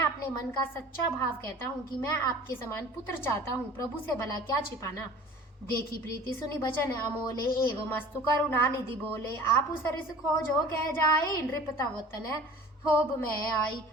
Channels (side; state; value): both; normal; correlation 0.45